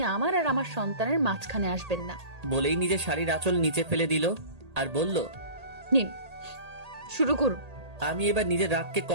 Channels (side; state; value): left; late; 1.8 ms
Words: আমার আর আমার সন্তানের মাঝখানে আসবেন না। বলেই নিজের শাড়ির আঁচল নিচে ফেলে দিল আর বলল, নিন, শুরু করুন। আমি এবার নিজের রাগকে